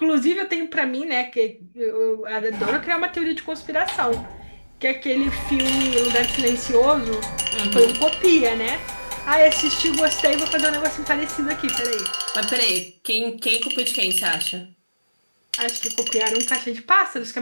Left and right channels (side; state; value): both; inverted; correlation -1.00